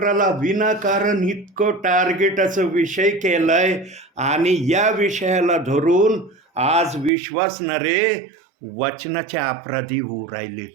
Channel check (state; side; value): drops out; left; at 7.1 s